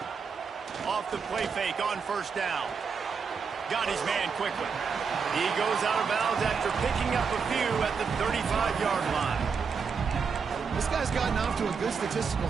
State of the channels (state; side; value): quieter; left; 5.8 dB